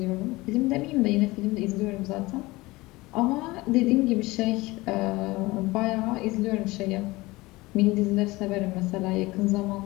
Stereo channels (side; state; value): right; quieter; 21.1 dB